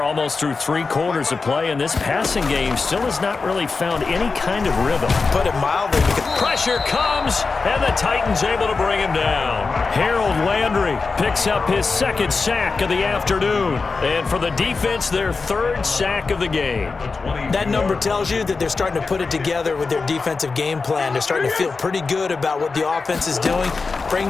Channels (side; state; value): right; quieter; 4.4 dB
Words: almost through 3 quarters of play, and this passing game still has not really found any kind of rhythm. Put it mildly, because pressure comes, and the Titans able to bring him down. Harold Landry picks up his second sack of the afternoon. And for the defense, their third sack of the game. That number tells you that they're starting to put it together with their defensive game plan. They're starting to feel pretty good about what the offense is doing,